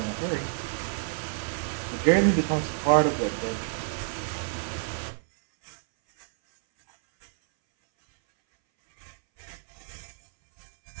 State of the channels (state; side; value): silent; left; 59 dB below the other